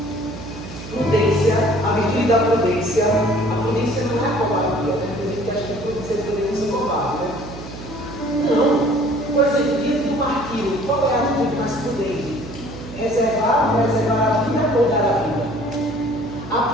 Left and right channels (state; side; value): noise; right; hum, 13 dB below the sound